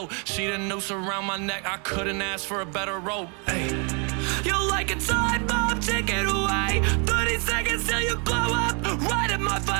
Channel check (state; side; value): quieter; left; 35.3 dB